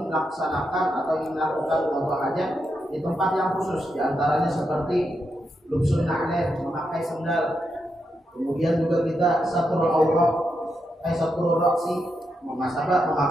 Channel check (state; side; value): normal; both; correlation 0.84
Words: atau ingin melakukan qada hajat di tempat yang khusus, di antaranya seperti lubsun na'lain, memakai sandal. Kemudian juga kita satrul aurat, satrul ra'si,